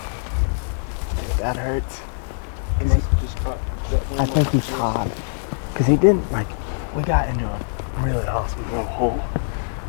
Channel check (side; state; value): right; silent; digital silence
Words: That hurts. He must have just caught that I think he's hot. Because he didn't, like, we got into a really awesome little hole